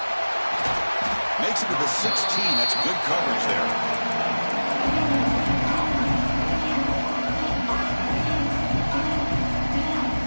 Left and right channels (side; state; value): both; inverted; correlation -1.00